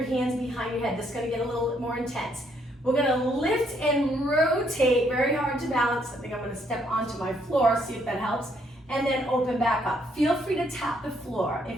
hands behind your head. This is gonna get a little bit more intense. We're gonna lift and rotate, very hard to balance. I think I'm gonna step onto my floor, see if that helps, and then open back up. Feel free to tap the floor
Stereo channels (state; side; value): normal; both; correlation 0.70